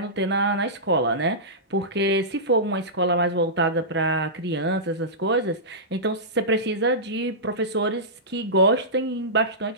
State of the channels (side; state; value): both; normal; correlation -0.16